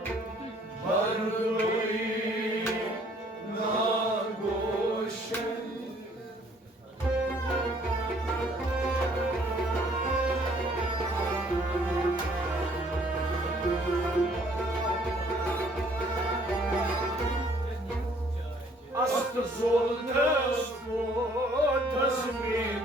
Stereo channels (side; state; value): both; normal; correlation 0.61